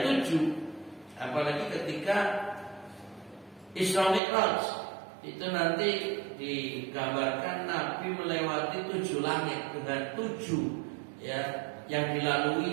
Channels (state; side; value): drops out; left; at 4.2 s